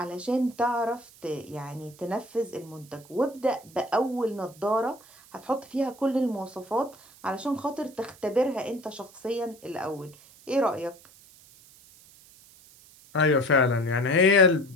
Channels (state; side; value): noise; right; hiss, 24 dB below the sound